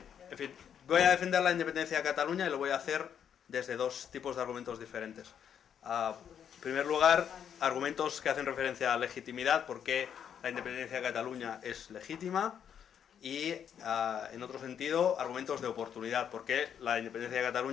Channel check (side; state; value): right; quieter; 8.5 dB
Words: fin, voy a defender la independencia de Cataluña y lo voy a hacer desde dos tipos de argumentos diferentes. En primer lugar, argumentos que hacen referencia a legitimidad, porque la independencia de Cataluña es legítima, y en otro sentido, argumentos de oportunidad, porque la independencia de